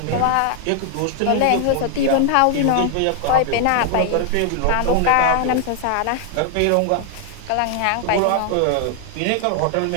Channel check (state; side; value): different; both; correlation 0.00